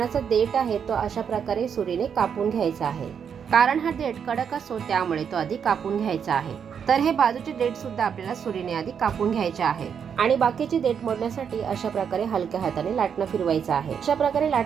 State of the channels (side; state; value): left; quieter; 7.4 dB